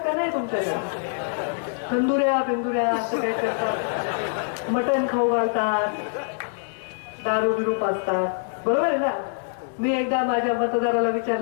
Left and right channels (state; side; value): silent; right; digital silence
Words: का नाही तुमच्याकडे? तंदुऱ्या बिंदुऱ्या असं काय करतात, मटण खाऊ घालतात, दारू बिरू पाजतात, बरोबर आहे ना? मी एकदा माझ्या मतदाराला